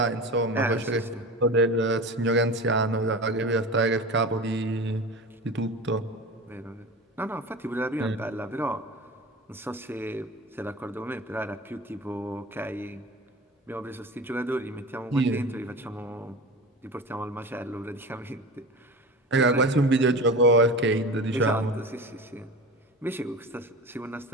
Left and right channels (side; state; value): both; normal; correlation 0.32